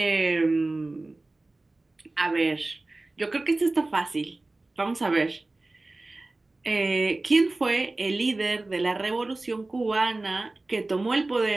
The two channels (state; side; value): quieter; left; 3.0 dB